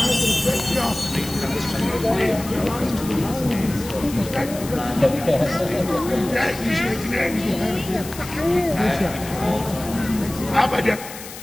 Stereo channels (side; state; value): left; noise; hiss, 13 dB below the sound